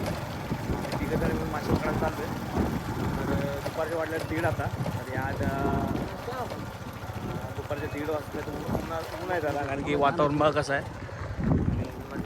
तिघं जण मिळून मासे पकडायला चाललो आहे. तर दुपारच्या वाटल्या 1:30 आता. तर आज दुपारच्या 1:30 वाजता तर ऊन आहे झाला, कारण की वातावरण बघा कसं आहे.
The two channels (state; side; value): identical; both; correlation 1.00